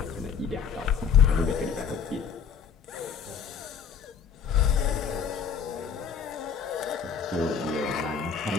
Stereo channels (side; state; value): right; quieter; 6.8 dB